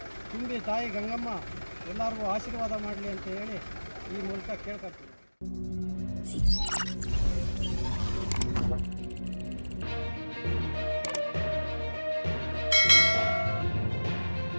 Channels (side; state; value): both; inverted; correlation -1.00